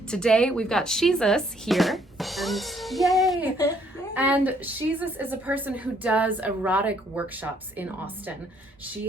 Today we've got Shesuz here. And yay! And Shesuz is a person who does erotic workshops in Austin. She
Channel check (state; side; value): normal; both; correlation 0.66